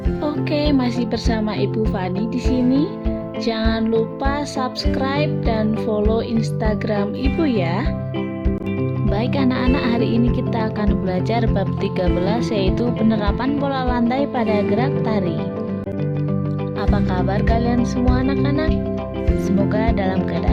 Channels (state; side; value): identical; both; correlation 1.00